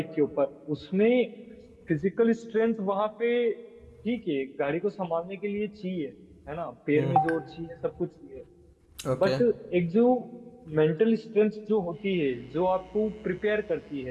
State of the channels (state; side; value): identical; both; correlation 1.00